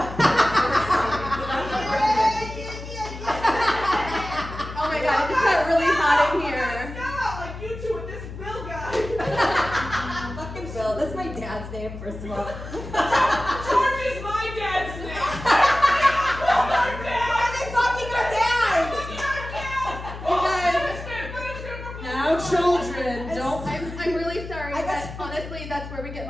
my god, it just got really hot in here. Like you two and this Bill guy. Fucking Bill. That's my dad's name, first of all. George is my dad's name. Why are they fucking our dads? Now, children, don't. I'm really sorry, I guess- but honestly, that's where we get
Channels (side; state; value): left; noise; hum, 11 dB below the sound